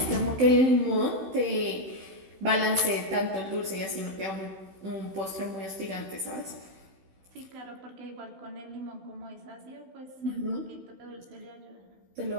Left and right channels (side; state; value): left; late; 16 ms